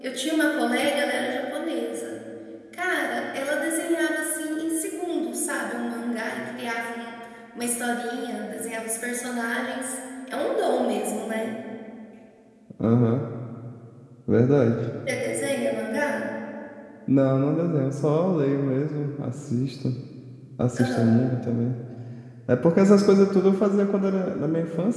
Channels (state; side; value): identical; both; correlation 1.00